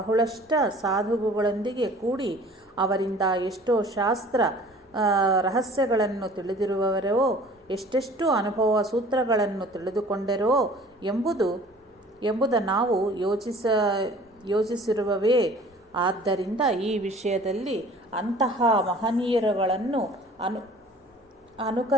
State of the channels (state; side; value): normal; both; correlation 0.49